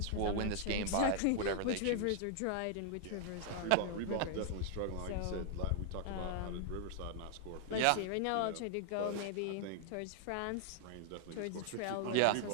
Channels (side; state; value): both; different; correlation -0.01